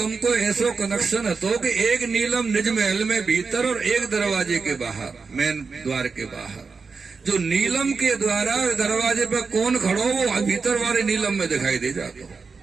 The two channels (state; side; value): quieter; left; 4.8 dB